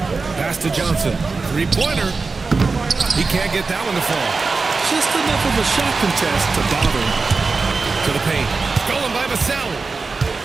Pass to Johnson. Three-pointer. He can't get that one to fall. Just enough of a shot contest to bother him. To the paint. Stolen by Vassell.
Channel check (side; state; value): left; quieter; 4.2 dB